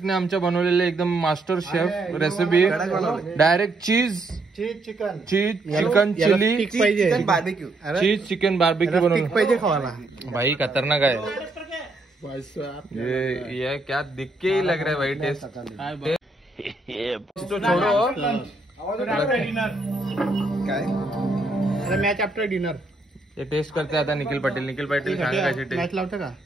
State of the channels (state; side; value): quieter; left; 3.0 dB